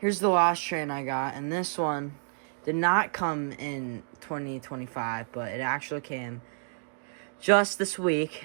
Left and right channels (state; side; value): silent; left; digital silence